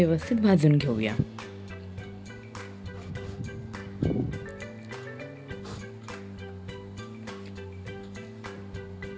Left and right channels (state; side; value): identical; both; correlation 1.00